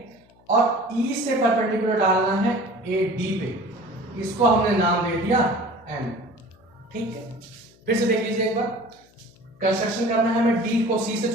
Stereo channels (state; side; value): noise; left; hum, 29 dB below the sound